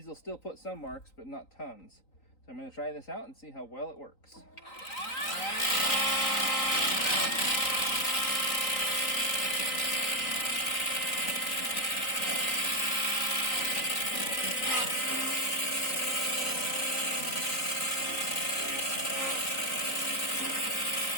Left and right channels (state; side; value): late; right; 3.9 ms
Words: will still put some marks, but not tons. So I'm going to try this out and see how well it works.